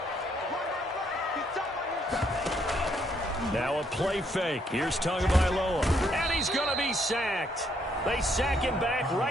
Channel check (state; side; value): normal; both; correlation 0.71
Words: Now a play fake. Here's Tagovailoa. And he's going to be sacked. They sack him back